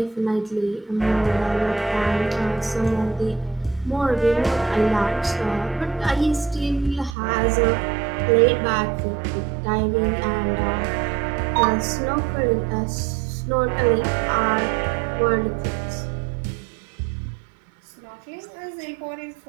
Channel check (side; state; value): left; drops out; at 7.2 s